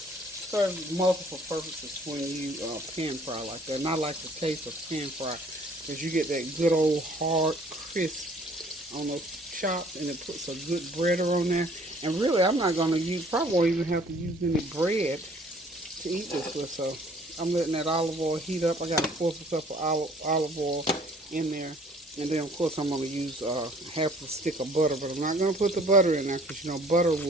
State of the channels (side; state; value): both; normal; correlation 0.56